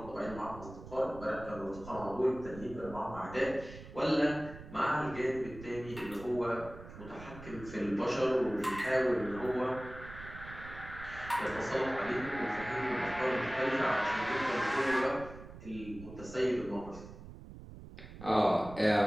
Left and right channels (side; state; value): right; noise; rumble, 14 dB below the sound